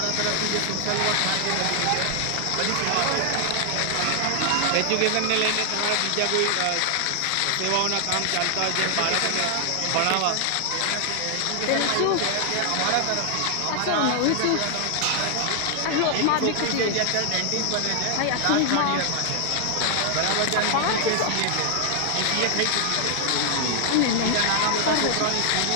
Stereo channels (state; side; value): different; both; correlation 0.00